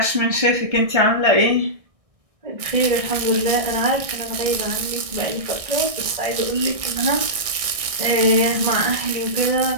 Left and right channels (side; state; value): left; late; 1.6 ms